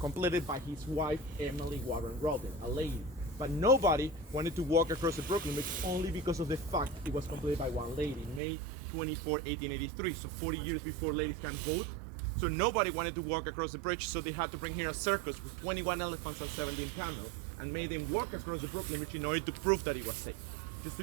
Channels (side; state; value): left; drops out; at 8.4 s